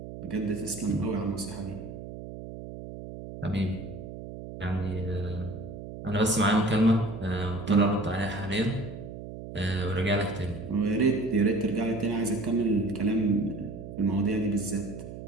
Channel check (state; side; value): noise; right; hum, 11 dB below the sound